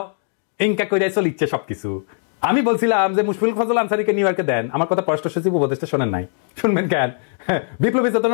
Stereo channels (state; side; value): silent; right; digital silence